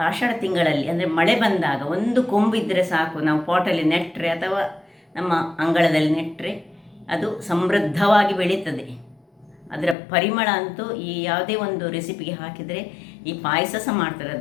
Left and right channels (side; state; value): right; drops out; at 10.0 s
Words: ಆಷಾಢ ತಿಂಗಳಲ್ಲಿ ಅಂದರೆ ಮಳೆ ಬಂದಾಗ ಒಂದು ಕೊಂಬಿದ್ದರೆ ಸಾಕು, ನಾವು ಪಾಟಲ್ಲಿ ನೆಟ್ಟರೆ ಅಥವಾ ನಮ್ಮ ಅಂಗಳದಲ್ಲಿ ನೆಟ್ಟರೆ ಅದು ಸಮೃದ್ಧವಾಗಿ ಬೆಳೀತದೆ. ಅದರ ಪರಿಮಳ ಅಂತೂ ಈ ಯಾವುದೇ ಒಂದು ರೆಸಿಪಿಗೆ ಹಾಕಿದರೆ, ಈ ಪಾಯಸ ಸಹ ಮಾಡ್ತಾರೆ,